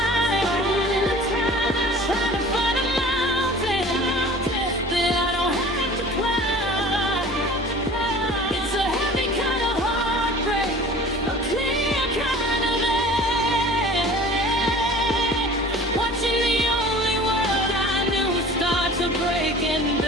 trying to find a mountain that I don't have to climb. It's a heavy kind of heartbreak, a clear kind of end. Watching the only world I knew start to break and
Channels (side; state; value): both; normal; correlation 0.44